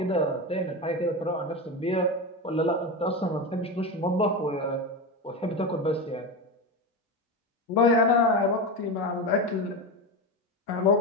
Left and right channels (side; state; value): both; normal; correlation 0.19